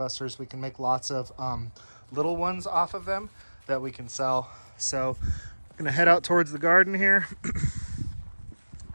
We can make lots of little ones off of them that we can sell. So I'm gonna head out towards the garden here.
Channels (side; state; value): both; inverted; correlation -1.00